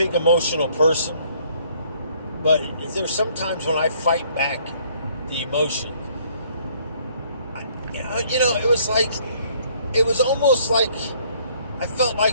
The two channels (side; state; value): both; inverted; correlation -0.62